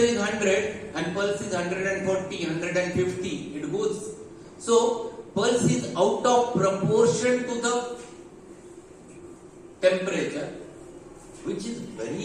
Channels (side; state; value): both; identical; correlation 1.00